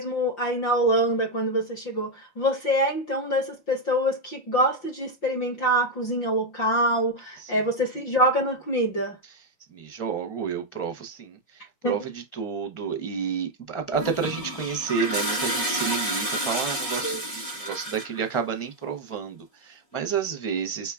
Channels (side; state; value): right; late; 5.4 ms